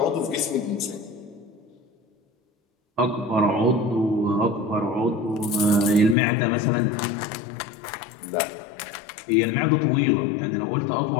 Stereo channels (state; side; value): drops out; right; at 6.2 s